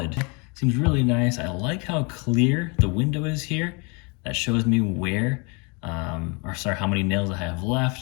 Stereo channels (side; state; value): right; quieter; 31.4 dB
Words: seems really nice. I like how clear the window is here. That shows me where, how many nails I have